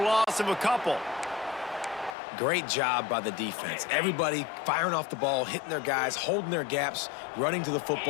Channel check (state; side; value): drops out; right; at 2.1 s